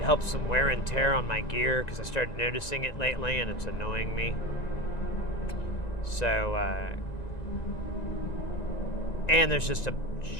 help some wear and tear on my gear because I started noticing it lately and it's annoying me. So, and there's just a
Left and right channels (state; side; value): late; right; 1.9 ms